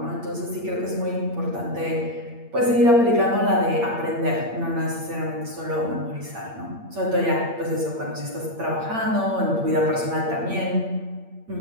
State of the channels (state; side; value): late; left; 8.7 ms